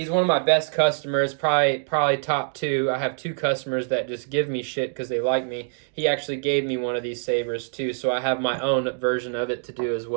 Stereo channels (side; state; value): left; silent; digital silence